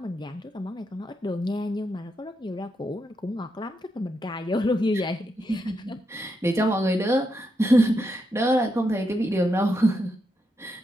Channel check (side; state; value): both; normal; correlation 0.83